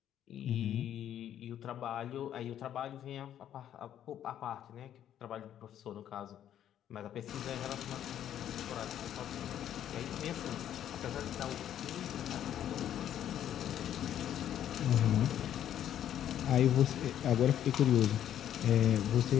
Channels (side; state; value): right; quieter; 10.6 dB